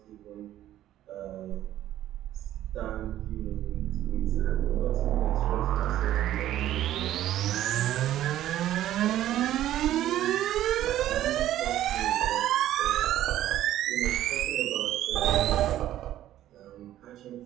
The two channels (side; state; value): left; quieter; 12.9 dB